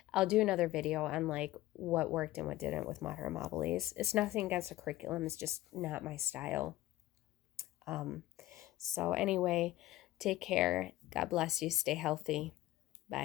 do another video on what worked and what didn't with Mater Amabilis. It's nothing against the curriculum. It's just not my style. So anyway, take care. God bless you. Stay healthy.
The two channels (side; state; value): right; quieter; 16.1 dB